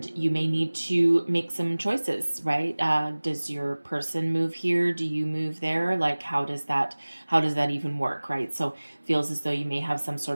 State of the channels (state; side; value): inverted; both; correlation -1.00